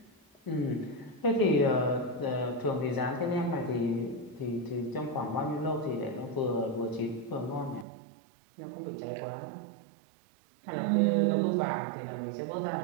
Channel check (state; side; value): drops out; left; at 7.9 s